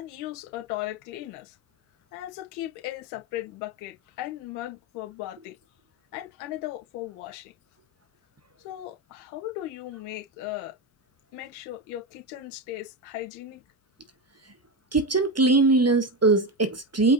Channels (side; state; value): both; normal; correlation 0.15